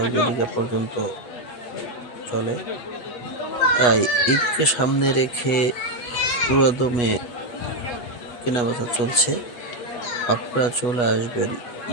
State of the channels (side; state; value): right; late; 8.2 ms